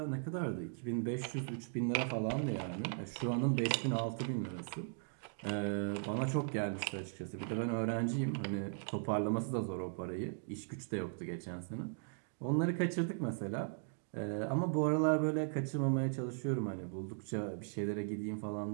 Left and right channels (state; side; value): silent; left; digital silence